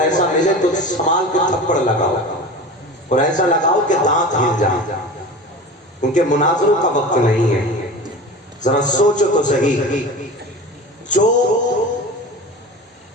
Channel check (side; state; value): both; normal; correlation 0.33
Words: ملے تو سنبھال کے تھپڑ لگاؤ اور ایسا لگاؤ کہ دانت ہل جائیں، کیونکہ مناظروں کا وقت نہیں ہے۔ ذرا سوچو تو صحیح، جو